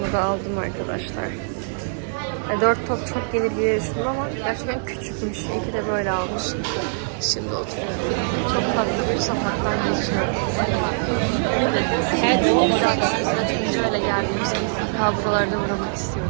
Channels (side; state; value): left; silent; 63 dB below the other